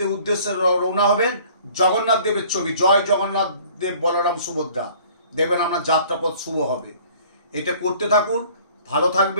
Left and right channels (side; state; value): both; inverted; correlation -0.53